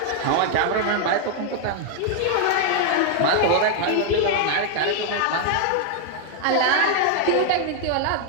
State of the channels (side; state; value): both; different; correlation 0.00